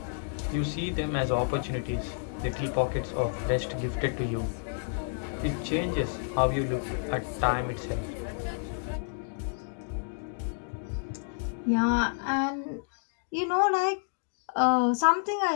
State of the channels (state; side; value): silent; right; digital silence